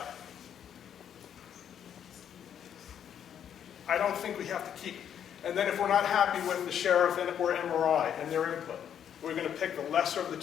don't think we have to keep, and then if we're not happy with the sheriff or MRI and their input, we're going to pick the lesser of the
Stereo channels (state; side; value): quieter; right; 9.1 dB